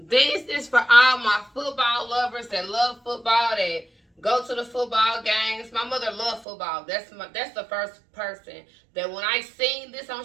is for all my football lovers that love football, that go to the football games. My mother loved football. That's the first person that when I seen this on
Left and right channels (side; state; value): left; drops out; at 6.5 s